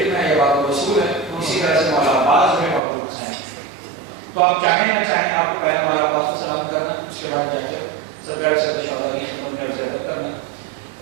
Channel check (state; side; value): drops out; left; at 2.8 s